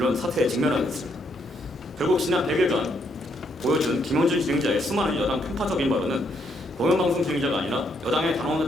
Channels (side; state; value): both; normal; correlation 0.74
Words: 사태에 직면하게 됐습니다. 결국 지난 100일간 보여준 김어준 진행자의 수많은 여당 편파적인 발언은 공영방송 진행자가 아니라 여당의 단언은